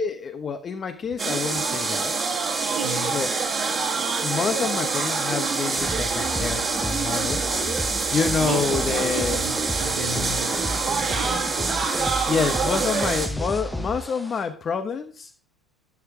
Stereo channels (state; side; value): normal; both; correlation 0.74